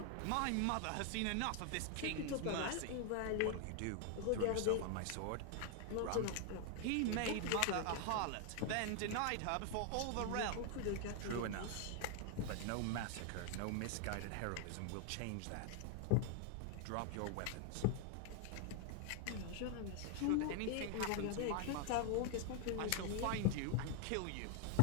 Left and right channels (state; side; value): different; both; correlation 0.00